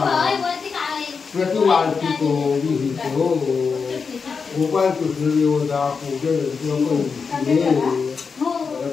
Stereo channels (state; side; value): quieter; right; 5.4 dB